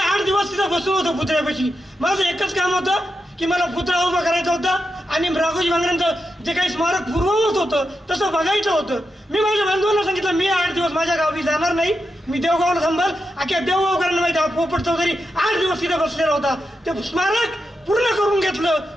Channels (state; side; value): normal; both; correlation 0.87